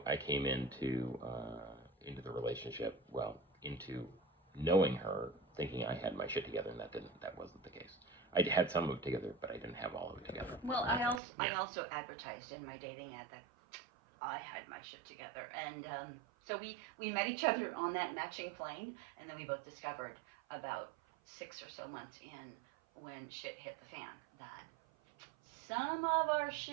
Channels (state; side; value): drops out; left; at 11.2 s